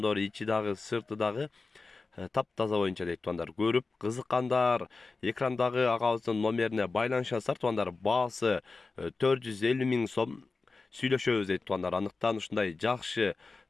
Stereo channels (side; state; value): right; quieter; 4.0 dB